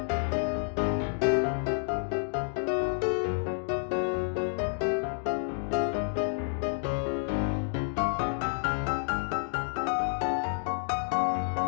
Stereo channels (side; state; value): right; silent; digital silence